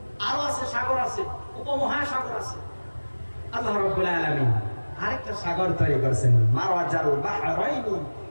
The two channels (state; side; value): inverted; both; correlation -1.00